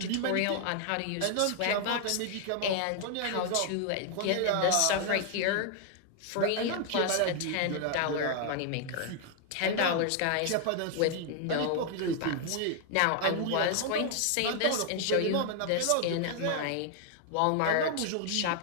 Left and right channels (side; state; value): both; different; correlation 0.00